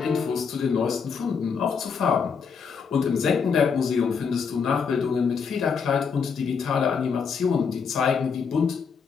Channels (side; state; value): right; quieter; 6.0 dB